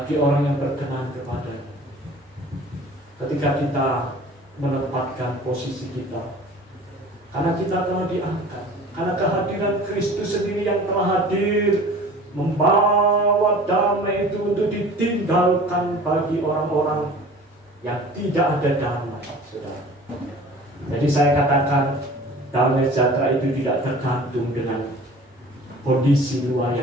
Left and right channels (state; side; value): normal; both; correlation 0.44